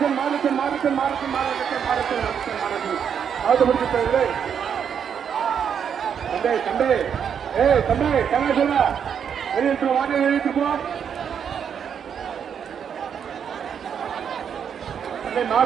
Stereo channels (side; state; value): left; quieter; 7.8 dB